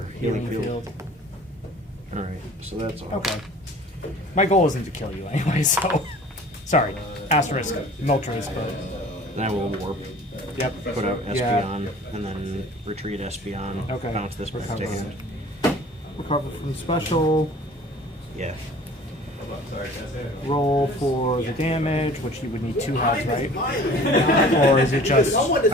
Healing Healing Field. field. Alright, so that's all. Okay. My goal isn't to kill you anyway, so. Sorry. Asterisk. Moltres, but. Then I will warp. Yep. Put out Yeah. Espeon, and then retreat Espeon. Okay. Bounce this back to Recover. hand. Recover from special. Yeah. Roll for the damage, which you would need 2 heads, right? Or is it just.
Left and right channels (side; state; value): both; normal; correlation 0.47